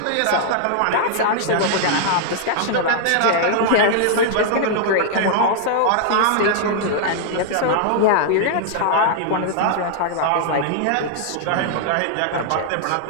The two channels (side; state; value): both; different; correlation -0.01